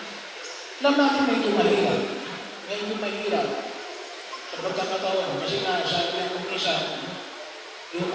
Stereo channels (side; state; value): both; identical; correlation 1.00